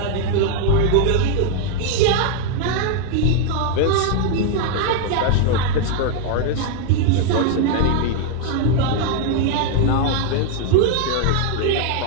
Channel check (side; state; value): both; different; correlation 0.00